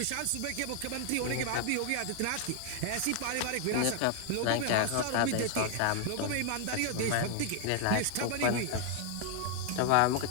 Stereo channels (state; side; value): different; both; correlation 0.00